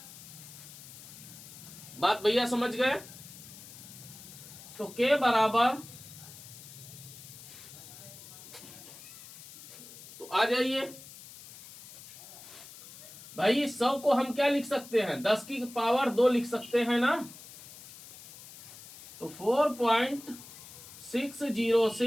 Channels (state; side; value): noise; left; hiss, 16 dB below the sound